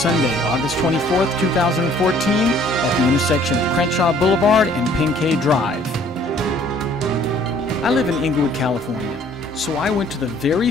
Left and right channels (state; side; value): normal; both; correlation 0.57